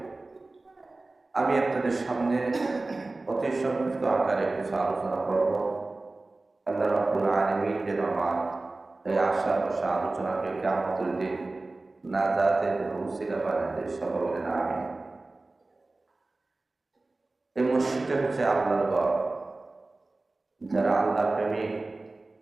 আমি আপনাদের সামনে অতি সংক্ষিপ্ত আকারে কিছু আলোচনা করব। আল্লাহ রাব্বুল আলামিন যেন আমার এই আশা বসা আলোচনাকে কিয়ামতের দিন নাজাতের উসিলা বানায় দেয়, সবাই বলেন আমিন। এই মসজিদটা হচ্ছে আল্লাহর ঘর। যারা আল্লাহ প্রেমিক,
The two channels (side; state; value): left; quieter; 3.2 dB